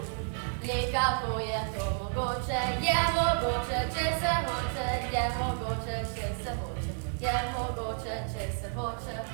Le kako je to mogoče, če se hoče, je mogoče, če se hoče, je mogoče, če se hoče.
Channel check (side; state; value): left; silent; 57 dB below the other